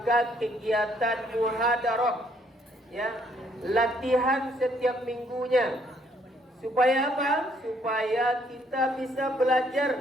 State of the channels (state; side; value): normal; both; correlation 0.67